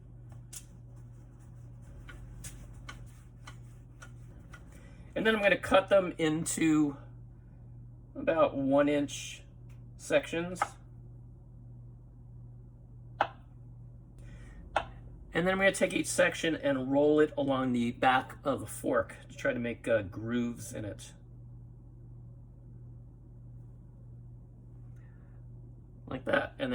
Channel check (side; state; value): both; identical; correlation 1.00